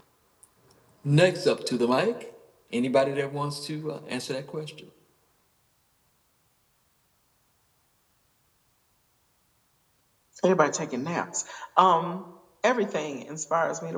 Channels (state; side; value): identical; both; correlation 1.00